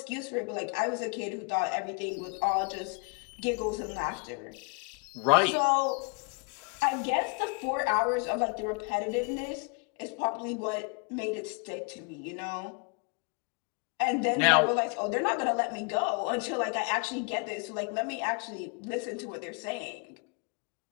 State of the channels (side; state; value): right; quieter; 35.7 dB